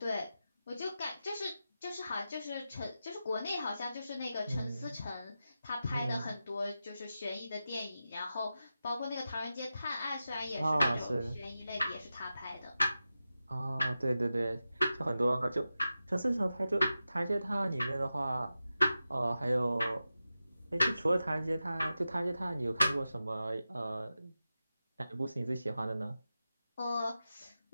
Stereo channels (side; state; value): both; inverted; correlation -0.92